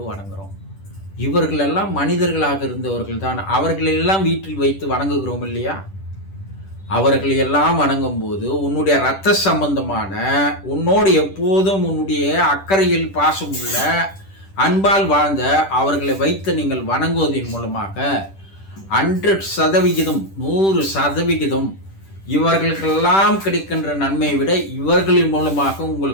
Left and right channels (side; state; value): right; late; 10 ms